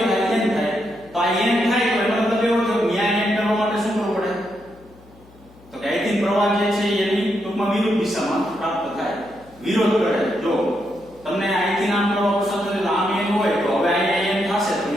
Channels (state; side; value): noise; left; hum, 25 dB below the sound